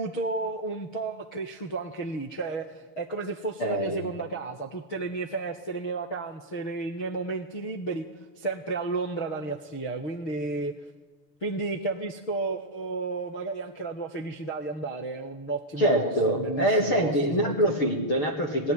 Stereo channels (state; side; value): late; right; 6.8 ms